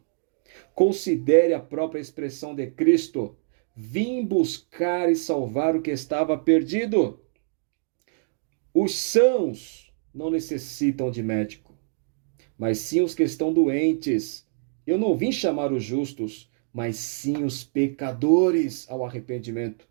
Considere a própria expressão de Cristo: vim buscar e salvar o que estava perdido. Os sãos não necessitam de médico, mas sim os que estão doentes. Eu não vim chamar os justos, mas sim os pecadores ao arrependimento.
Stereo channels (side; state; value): left; silent; digital silence